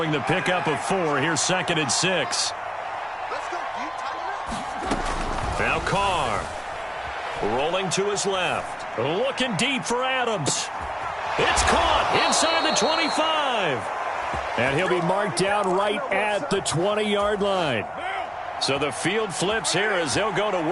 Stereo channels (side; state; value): both; identical; correlation 1.00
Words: the pickup of 4, here's 2nd and 6. Now Carr, rolling to his left, looking deep for Adams. It's caught inside the 25. And he'll be marked down right at the 20-yard line. So the field flips here as they'll go to